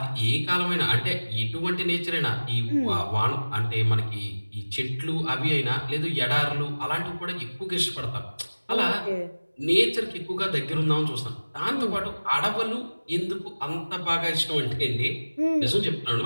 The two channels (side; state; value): both; inverted; correlation -1.00